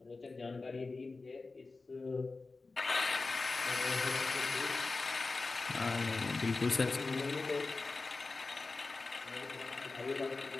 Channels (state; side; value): quieter; right; 3.8 dB